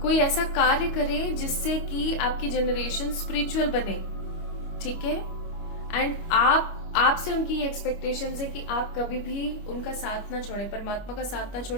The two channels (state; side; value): late; right; 25 ms